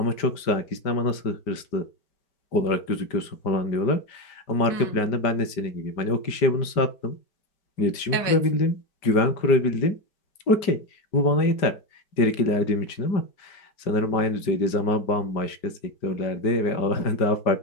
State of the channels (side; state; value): right; late; 5.0 ms